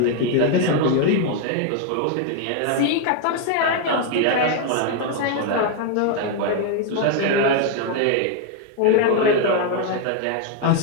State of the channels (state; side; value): different; both; correlation 0.01